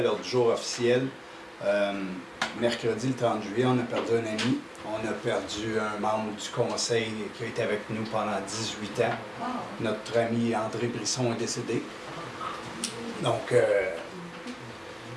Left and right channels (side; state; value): both; identical; correlation 1.00